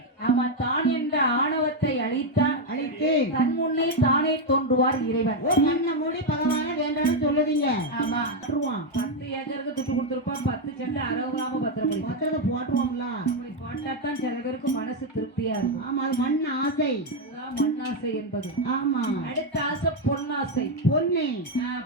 ஆமா, தான் என்ற ஆணவத்தை அழித்து தன் முன்னே தானே தோன்றுவார் இறைவன். மண்ண மூடி பகவான வேண்டாம்னு சொல்லுதீங்க. ஆமா, 10 ஏக்கருக்கு துட்டு கொடுத்துருப்பான். 10 சென்ட் 60 கிராம பத்திரம் போட்டுருவோம்ல. போட்டாத்தான் சில பேருக்கு மனசு திருப்தியா இருக்கும். ஆமா, அது மண் ஆசை. மண்ணாசை என்பது. ஆமா, அடுத்த ஆசை பொன்னாசை.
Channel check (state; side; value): normal; both; correlation 0.04